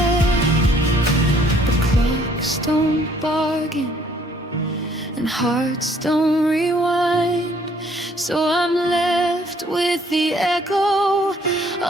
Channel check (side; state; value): both; normal; correlation 0.62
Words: The clocks don't bargain and hearts don't rewind, so I'm left with the echo